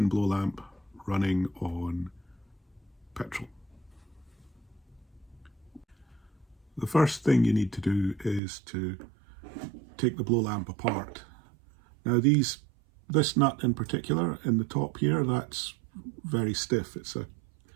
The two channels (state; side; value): drops out; left; at 8.4 s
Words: blow lamp running on petrol. The first thing you need to do is to take the blow lamp apart. Now this nut in particular in the top here, that's very stiff. It's a